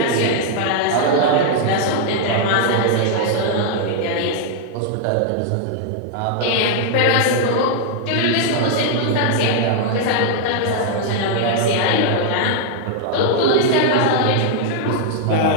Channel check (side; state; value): both; different; correlation 0.00